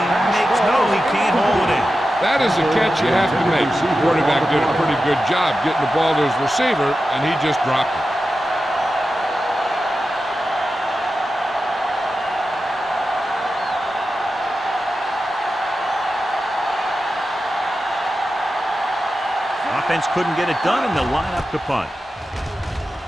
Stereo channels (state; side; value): normal; both; correlation 0.92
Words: can't hold it in. That is a catch you have to make. The quarterback did a pretty good job getting the ball to his receiver, and he just dropped it. Offense couldn't get it done, and they'll line up to punt.